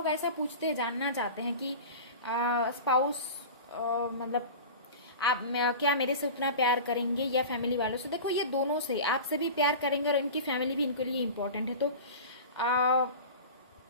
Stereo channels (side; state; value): both; inverted; correlation -0.33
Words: ऐसा पूछते हैं, जानना चाहते हैं कि स्पाउस मतलब आप क्या मेरे से उतना प्यार करेंगे या फैमिली वालों से। देखो ये दोनों से, आपसे भी प्यार करेंगे और इनकी फैमिली भी इनके लिए इम्पोर्टेंट है, तो